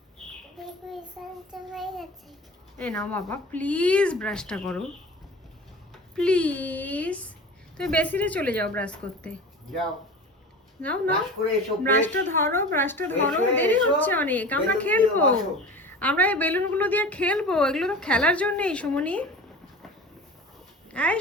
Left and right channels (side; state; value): both; normal; correlation 0.36